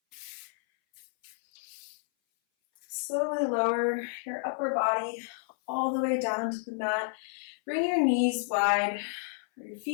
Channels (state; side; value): silent; right; 57 dB below the other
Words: Slowly lower your upper body all the way down to the mat. Bring your knees wide, or your